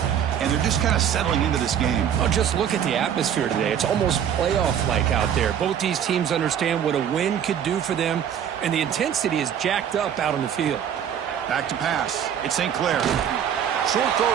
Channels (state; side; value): quieter; left; 9.0 dB